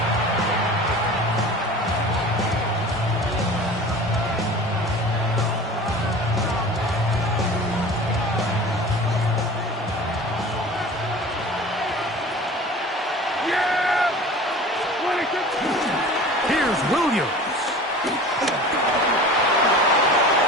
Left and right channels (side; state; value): both; normal; correlation 0.39